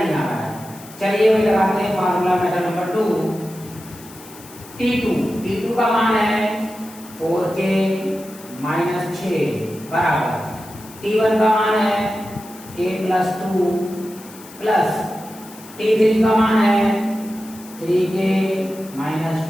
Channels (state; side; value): noise; left; hiss, 19 dB below the sound